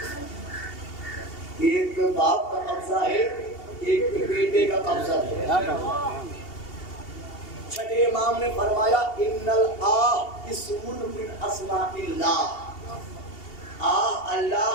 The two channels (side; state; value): right; late; 2.7 ms